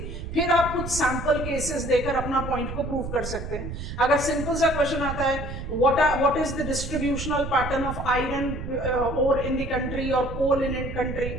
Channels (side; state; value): right; noise; rumble, 7 dB below the sound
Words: फिर आप कुछ सैंपल केसेस देकर अपना पॉइंट को प्रूव कर सकते हैं. अगर सिंपल सा क्वेश्चन आता है what is the distributional pattern of iron ore in the country or coal in a country,